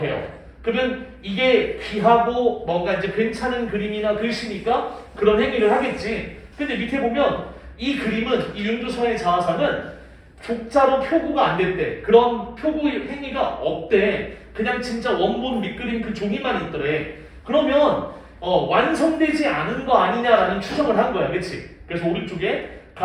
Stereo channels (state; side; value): identical; both; correlation 1.00